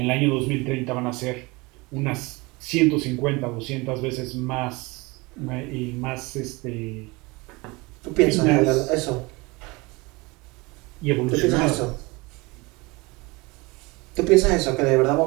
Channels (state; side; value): quieter; left; 24.7 dB